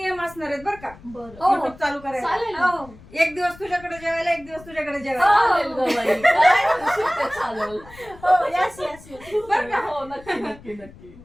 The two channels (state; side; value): noise; left; rumble, 21 dB below the sound